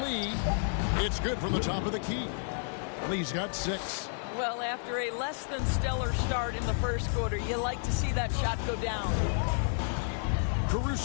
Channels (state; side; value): silent; right; digital silence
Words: It's good from the top of the key. Lee's got 6. Well, after a less than stellar start in the first quarter, you like to see that shot go down.